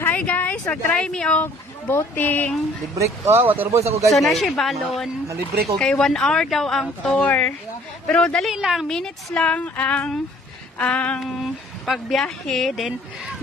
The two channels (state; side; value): normal; both; correlation 0.56